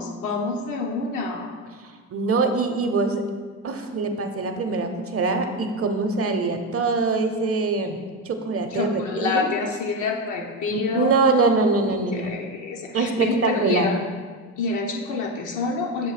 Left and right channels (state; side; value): normal; both; correlation 0.14